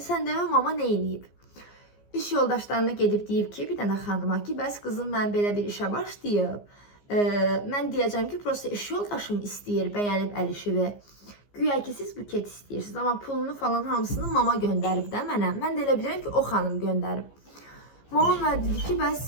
demə mama nə eləyib? İş yoldaşlarına gedib deyib ki, bir dənə xanıma ki, bəs qızım mən belə bir işə başlayıb. Mən deyəcəm ki, prosta iş yoldaşım istəyir, bəyənib əl işimi. Güya ki, siz buket istəyirsiniz, amma pulunu falan hamısını mama göndərib də mənə. Mən də elə bilirəm ki, o xanım göndərib. Mama mənə dedi ki, bəs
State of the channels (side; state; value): right; late; 15 ms